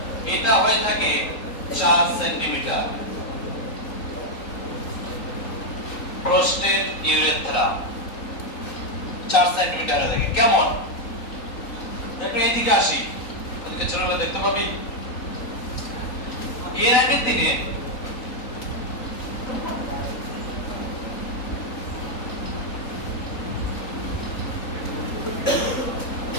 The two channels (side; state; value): right; late; 3.8 ms